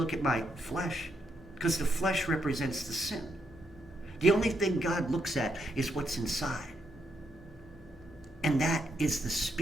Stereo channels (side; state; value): both; normal; correlation 0.79